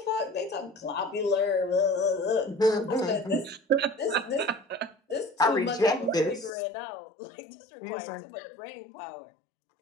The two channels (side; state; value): right; drops out; at 6.5 s